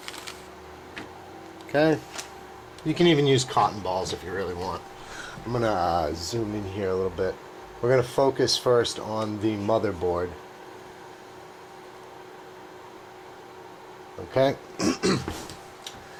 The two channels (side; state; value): both; identical; correlation 1.00